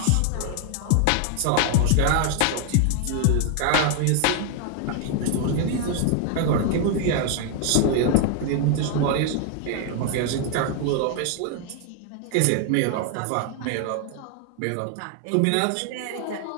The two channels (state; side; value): different; both; correlation 0.00